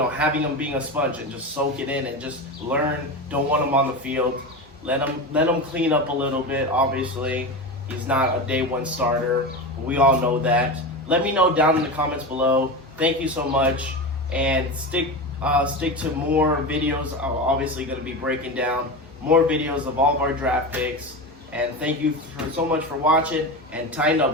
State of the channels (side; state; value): both; normal; correlation 0.23